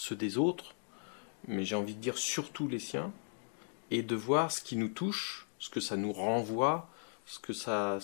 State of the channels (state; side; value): silent; right; digital silence